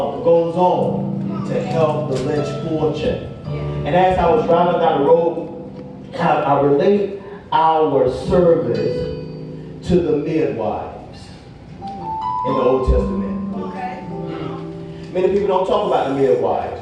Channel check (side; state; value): both; identical; correlation 1.00